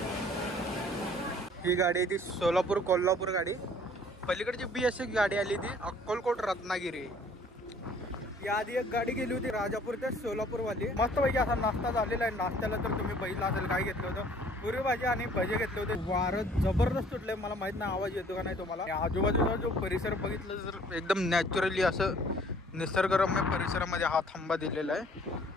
ही गाडी आहे ती सोलापूर कोल्हापूर गाडी पलीकडची BS6 गाडी आली ती अक्कलकोट रत्नागिरी याआधी एक गाडी गेली होती राजापूर ते सोलापूरवाली मस्तपैकी असा नाश्ता झालेला आहे नाश्त्याला तर तुम्ही बघितलं असेल काय घेतलं होतं पुरी भाजी आणि भजे घेतले होते वारं जबरदस्त सुटलंय मला माहित नाही आवाज येतो का नाही तुम्हाला आजूबाजूचा जो परिसर बघितलं तर एकदम नॅचरली असं निसर्गरम्य परिसरामध्ये हा थांबा दिलेला आहे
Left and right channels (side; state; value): both; normal; correlation 0.56